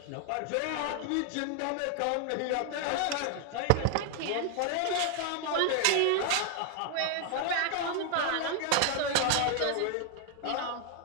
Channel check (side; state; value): both; different; correlation 0.00